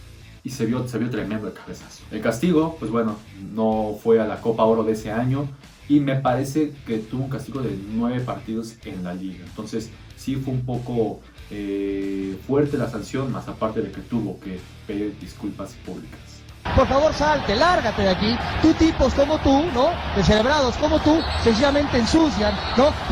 se vio tremendo el cabezazo. El castigo, pues bueno, no fue a la Copa Oro de ese año, y me parece que tuvo un castigo de 9 partidos en la liga. Entonces sí fue un poco fuerte la sanción, más aparte de que tuvo que pedir disculpas públicas. Por favor, salte, lárgate de aquí. Tú tipos como tú, ¿no? Descerebrados como tú, sencillamente ensucian, ¿no?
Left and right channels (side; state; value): both; identical; correlation 1.00